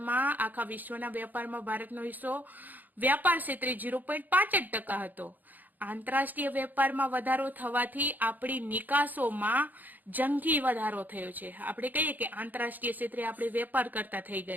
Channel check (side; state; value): left; late; 0.084 ms